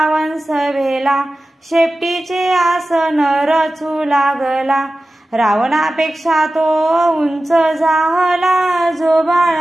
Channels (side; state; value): both; normal; correlation 0.95